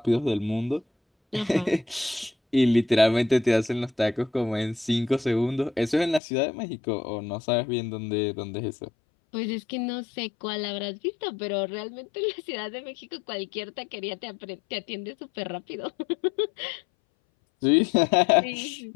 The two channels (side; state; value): right; drops out; at 6.2 s